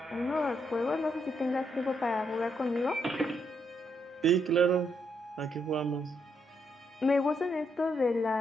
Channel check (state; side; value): normal; both; correlation 0.77